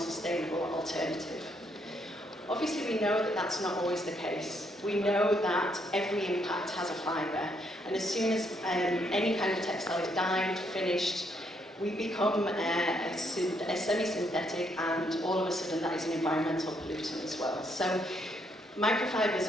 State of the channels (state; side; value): normal; both; correlation 0.73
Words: alternative. Obviously we know that that's not always the case. We know that every impact has a fibre, and as soon as any kind of textile is dyed, finished, we become a semi-synthetic, and all of a sudden that is an environmental pollutant as well. So